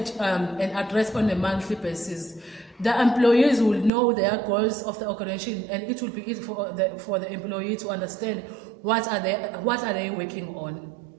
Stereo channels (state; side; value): drops out; left; at 3.9 s